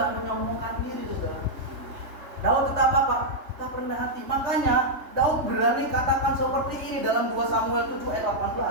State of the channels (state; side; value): late; left; 3.2 ms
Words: menyombongkan diri, saudara. Daud tetap apa? Tetap rendah hati. Makanya Daud berani katakan seperti ini dalam 2 Samuel 7 ayat